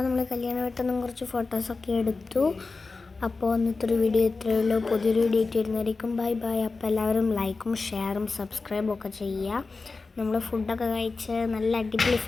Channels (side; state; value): right; quieter; 4.0 dB